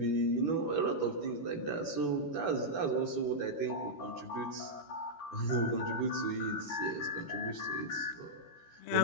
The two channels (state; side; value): late; right; 13 ms